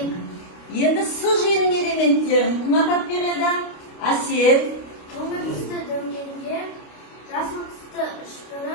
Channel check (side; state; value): right; late; 29 ms